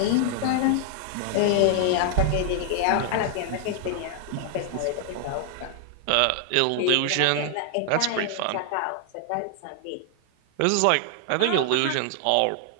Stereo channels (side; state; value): both; different; correlation 0.00